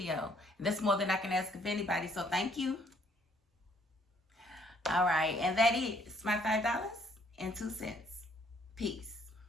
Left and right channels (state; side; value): normal; both; correlation 0.65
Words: That's more than I can ask of anybody. So thank you. All right. And that is my $5.02. Peace.